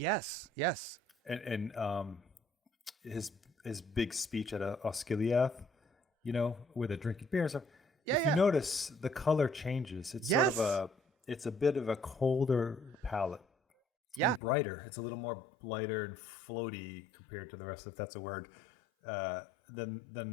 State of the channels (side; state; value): right; drops out; at 14.4 s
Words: And his big speech at Osgiliath, where they're drinking beers. If you notice, the color changes. It's sort of it's a bit of a colder palette. Yeah, and brighter. It's a little more lighter and floaty compared to the rest, if that's a word,